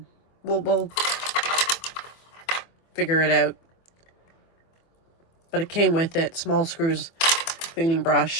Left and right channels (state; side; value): late; right; 24 ms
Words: We'll figure it out. But it came with it. Small screws, cleaning